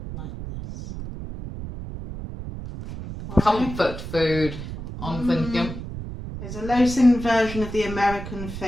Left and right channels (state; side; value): noise; right; rumble, 9 dB below the sound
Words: like this. Comfort food, I'm thinking. There's a low-sin version of the American